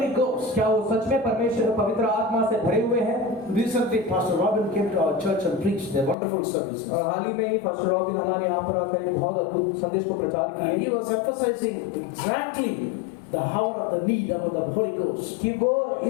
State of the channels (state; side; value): drops out; right; at 6.2 s